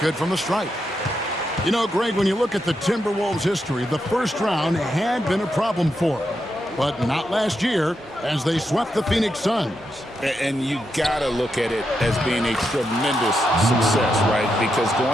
from the stripe. You know, Greg, when you look at the Timberwolves' history, the first round had been a problem for them. But not last year, as they swept the Phoenix Suns. And you got to look at it as being a tremendous success, right? Because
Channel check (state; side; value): normal; both; correlation 0.84